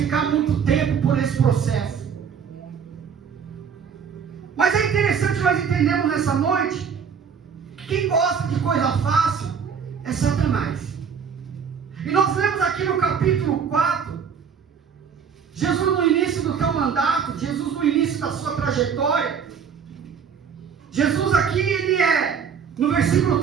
muito tempo por esse processo. Mas é interessante nós entendermos nessa noite que quem gosta de coisa fácil é Satanás. E nós lemos aqui no capítulo 4, Jesus no início do teu mandato, Jesus no início da sua trajetória. Jesus aqui, no versículo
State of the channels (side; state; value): left; quieter; 6.8 dB